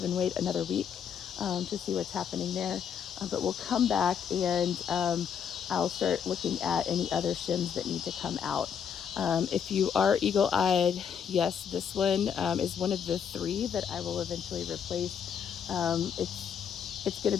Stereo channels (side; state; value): right; quieter; 7.7 dB